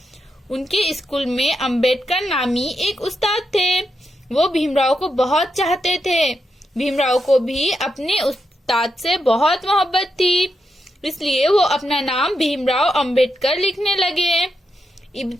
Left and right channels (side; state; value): both; normal; correlation 0.85